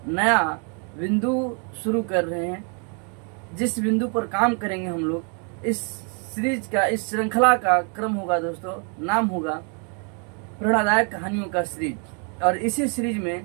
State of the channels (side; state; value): left; quieter; 38.7 dB